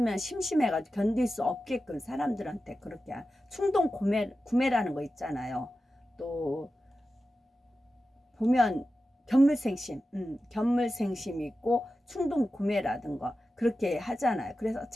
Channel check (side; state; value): both; normal; correlation 0.92